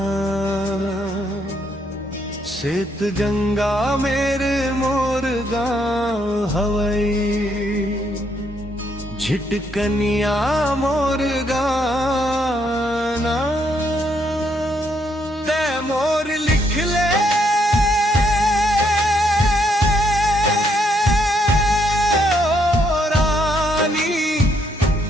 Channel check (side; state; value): both; normal; correlation 0.73